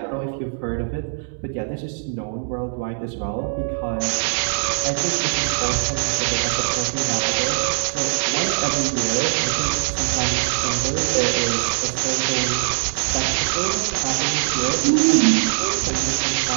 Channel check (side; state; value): left; silent; digital silence